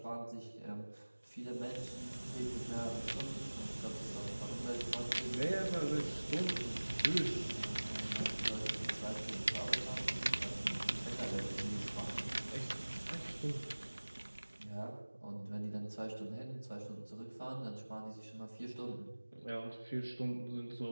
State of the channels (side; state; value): both; inverted; correlation -1.00